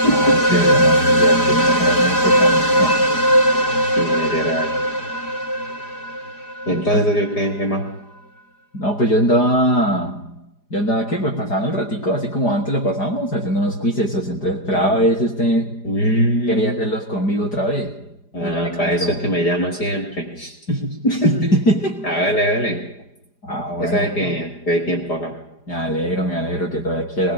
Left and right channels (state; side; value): late; right; 4.9 ms